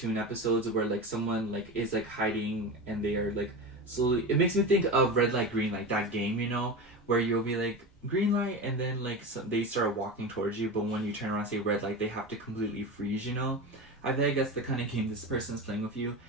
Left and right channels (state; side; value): normal; both; correlation 0.25